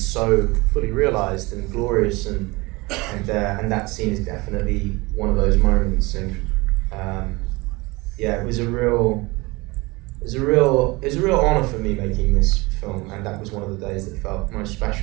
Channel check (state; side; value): quieter; left; 23.6 dB